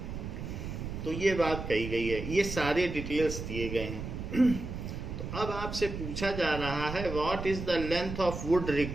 तो ये बात कही गई है, ये सारे डिटेल्स दिए गए हैं. तो अब आपसे पूछा जा रहा है what is the length of would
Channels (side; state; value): right; noise; rumble, 7 dB below the sound